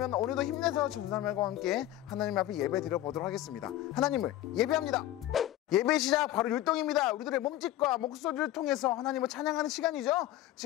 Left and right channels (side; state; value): right; quieter; 14.0 dB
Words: 오늘도 힘내서 전사님과 함께 하나님 앞에 예배 드려보도록 하겠습니다. 하나님을 예배합니다. 예배 시작 바로 율동입니다. 우리들의 몸짓과 목소리를 통해서 하나님을 찬양하는 시간이죠.